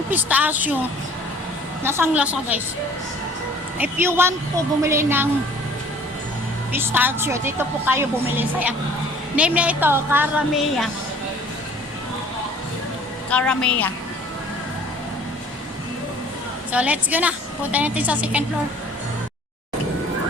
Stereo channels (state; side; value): normal; both; correlation 0.51